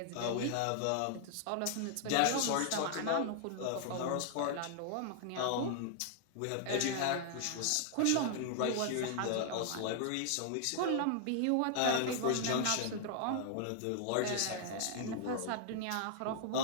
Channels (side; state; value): both; different; correlation 0.00